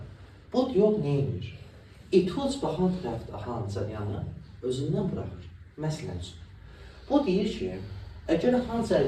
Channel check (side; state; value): both; identical; correlation 1.00